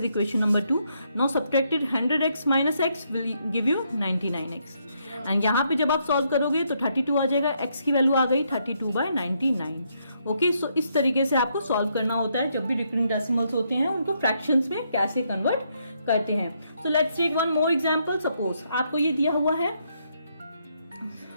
equation number 2. Now subtracted 100x minus x will give you 99x. and यहाँ पे जब आप सॉल्व करोगे तो 32 आ जाएगा, x की वैल्यू आ गई 32/99. ओके, सो इस तरीके से आपको सॉल्व करना होता है. जब भी रिकरिंग डेसिमल्स होते हैं उनको फ्रैक्शंस में कैसे कन्वर्ट करते हैं. So let's take one more example. Suppose आपको ये दिया हुआ है,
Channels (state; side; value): inverted; both; correlation -0.75